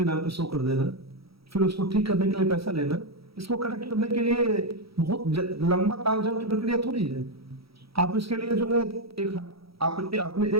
नाम पे शो कर देना, फिर उसको ठीक करने के लिए पैसा लेना, इसको करेक्ट करने के लिए बहुत लंबा तालझाम की प्रक्रिया थोड़ी है। आप इसके लिए जो है आपने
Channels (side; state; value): left; late; 0.76 ms